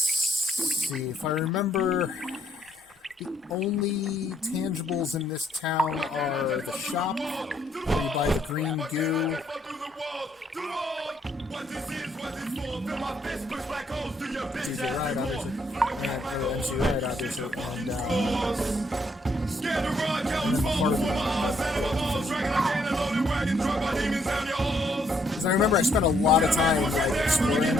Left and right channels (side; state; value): both; normal; correlation 0.71